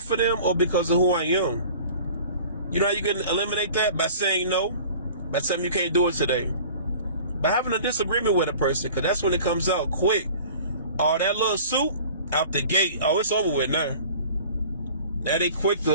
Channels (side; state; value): both; inverted; correlation -0.45